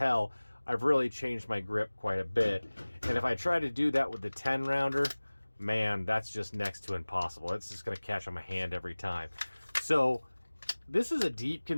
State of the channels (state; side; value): inverted; both; correlation -1.00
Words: I've really changed my grip quite a bit. And if I try to do that with the 10-rounder, man, that's just next to impossible. It's just going to catch on my hand every time. So this is a deep